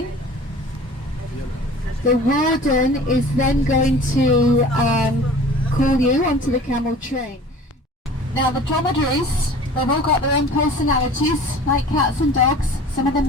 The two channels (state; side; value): normal; both; correlation 0.44